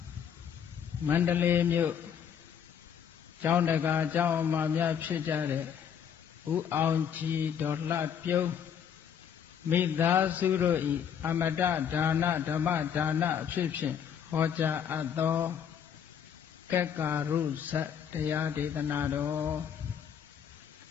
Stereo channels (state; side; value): quieter; right; 8.2 dB